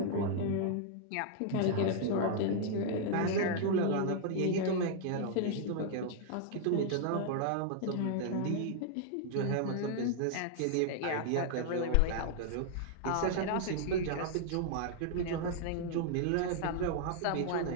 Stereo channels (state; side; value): different; both; correlation -0.01